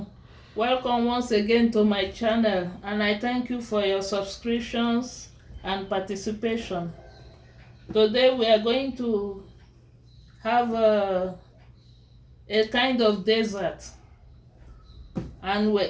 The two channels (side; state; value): both; identical; correlation 1.00